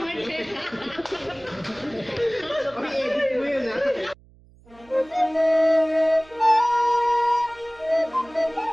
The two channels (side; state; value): right; noise; hum, 27 dB below the sound